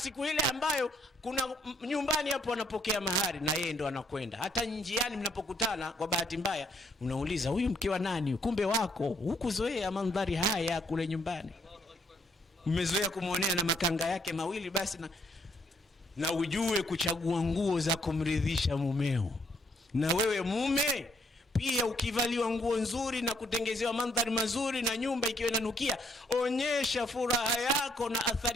ile ambayo kuna nyumbani hapo anapokea mahari, na yeye ndo anakwenda. Hata njiani mnapokutana kwa bahati mbaya unauliza, huyu mke wa nani? Kumbe wako. Hukuzoea mandhari haya kule nyumbani, umezoea kumuonea na makanga yake mawili basi. Na na ujue kuchagua nguo za kumridhisha mumeo. Na wewe mume pia, ukivaliwa nguo nzuri na kutengezewa mandhari mazuri na nyumba ikiwa inanukia, onyesha furaha yako na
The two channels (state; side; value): normal; both; correlation 0.68